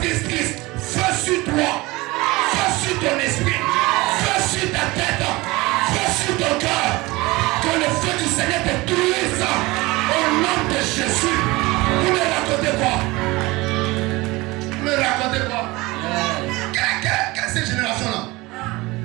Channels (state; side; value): quieter; left; 21.8 dB